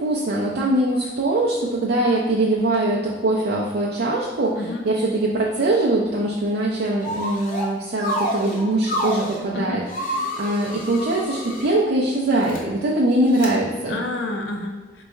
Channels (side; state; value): both; normal; correlation 0.36